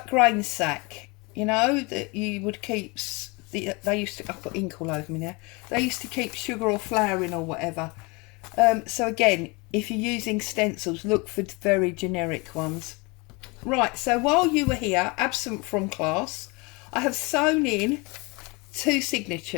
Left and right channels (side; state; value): right; quieter; 27.6 dB